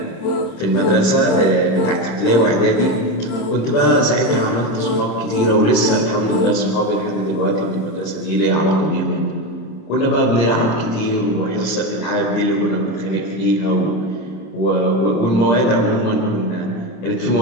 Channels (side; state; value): right; late; 26 ms